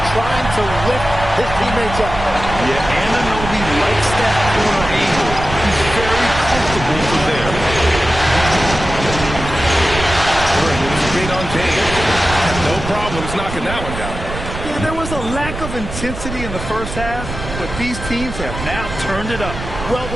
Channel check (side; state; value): right; noise; rumble, 8 dB below the sound